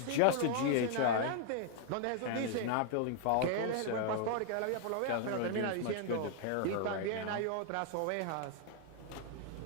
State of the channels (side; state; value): both; different; correlation 0.00